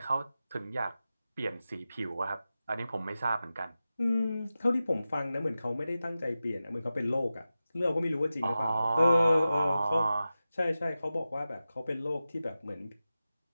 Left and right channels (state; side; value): inverted; both; correlation -0.94